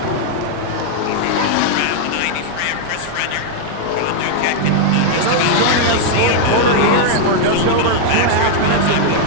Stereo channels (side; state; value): both; different; correlation 0.00